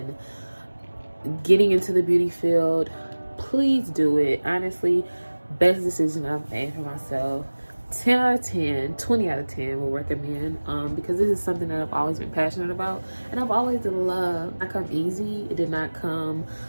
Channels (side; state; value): both; inverted; correlation -1.00